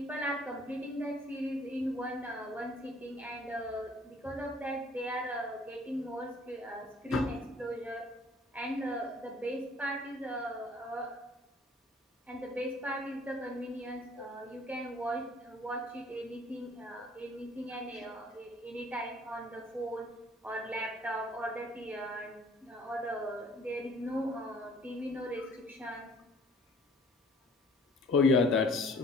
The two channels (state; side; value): normal; both; correlation 0.55